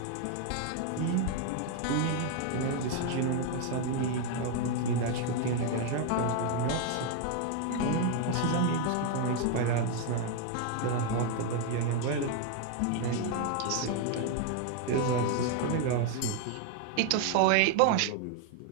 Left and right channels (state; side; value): different; both; correlation 0.01